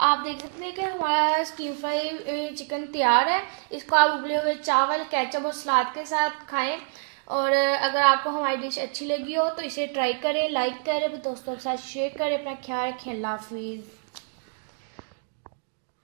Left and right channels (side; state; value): left; silent; digital silence